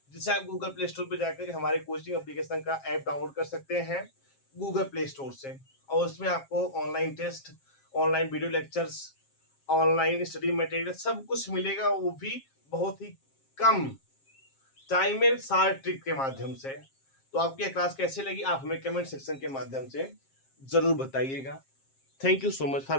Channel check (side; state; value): right; late; 7.4 ms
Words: जिसे आप गूगल प्ले स्टोर पर जाकर हमारे कोचिंग एप्लीकेशन का ऐप डाउनलोड कर सकते हैं गूगल प्ले स्टोर से। और उसमें आपको online test, online video lectures, online study material सब कुछ मिलेगा, वो भी बहुत ही कम टाइम में शार्ट ट्रिक के माध्यम से। तो आपकी यह क्लास कैसे लगी आप हमें कमेंट सेक्शन के माध्यम से जरूर बताइएगा। Thank you so much for